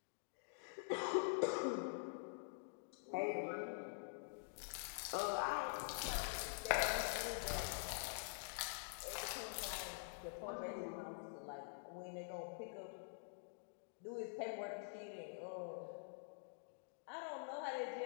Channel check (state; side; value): silent; right; digital silence